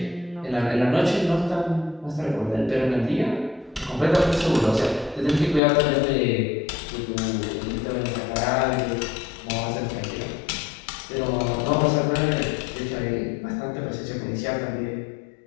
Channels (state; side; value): drops out; right; at 5.6 s